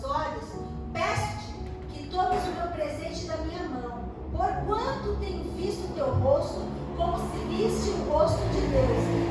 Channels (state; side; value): identical; both; correlation 1.00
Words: olhos, peço-te que tomes o meu presente da minha mão, porquanto tenho visto o teu rosto como se viste o rosto de Deus,